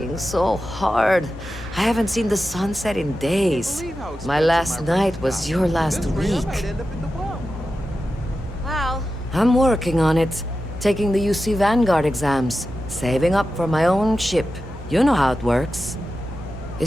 so hard. I haven't seen the sunset in days. My last night was your last week. Well, I'm working on it. Taking the UC Vanguard exams. Saving up for my own ship. You know how it works.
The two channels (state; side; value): normal; both; correlation 0.92